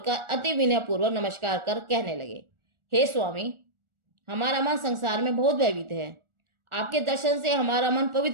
अति विनय पूर्वक नमस्कार कर कहने लगे, हे स्वामी, हमारा मन संसार में बहुत भयभीत है। आपके दर्शन से हमारा मन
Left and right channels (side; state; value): left; late; 1.4 ms